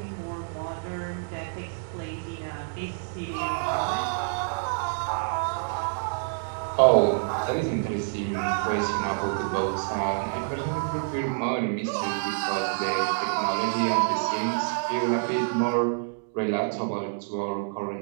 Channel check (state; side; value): silent; left; digital silence